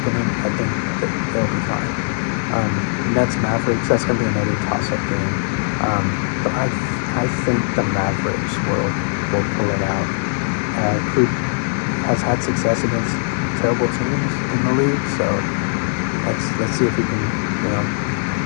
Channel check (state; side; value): silent; right; digital silence